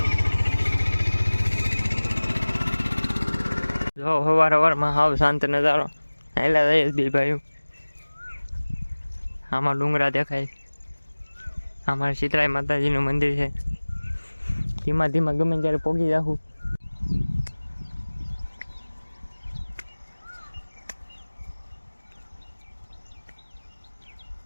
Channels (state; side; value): inverted; both; correlation -1.00